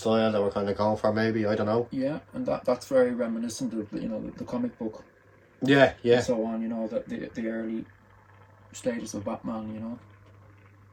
that we're kind of going for, maybe, I don't know. Yeah, and that's very reminiscent of, you know, the comic book. Yeah, yeah. And so on, you know, the early status of Batman, you know.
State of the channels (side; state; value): both; identical; correlation 1.00